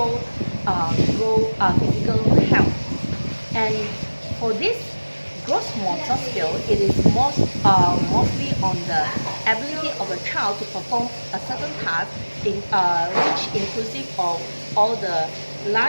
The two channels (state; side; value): inverted; both; correlation -1.00